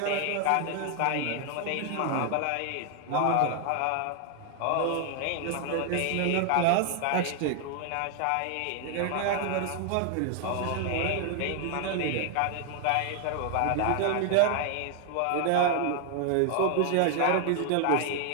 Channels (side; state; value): both; different; correlation 0.00